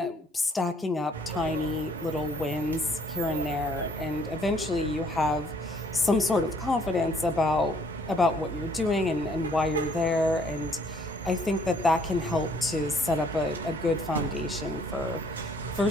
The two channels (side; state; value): both; normal; correlation 0.62